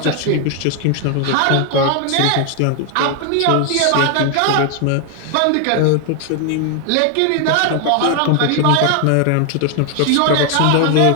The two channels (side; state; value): both; different; correlation 0.00